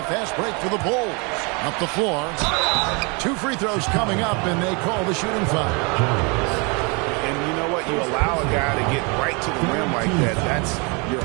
fast break for the Bulls. Up the floor. 2 free throws coming up, and they call the shooting foul. And you know what? You allow a guy to get right to the rim like that. That's your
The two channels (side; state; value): left; quieter; 31.0 dB